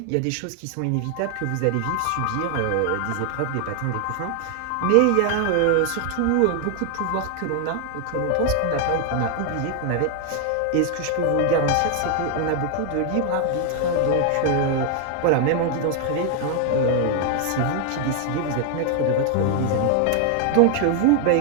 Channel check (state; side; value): different; both; correlation 0.00